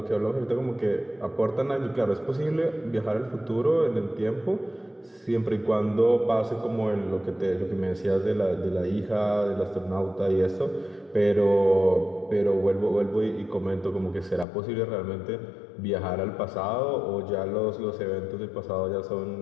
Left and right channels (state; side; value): drops out; right; at 14.5 s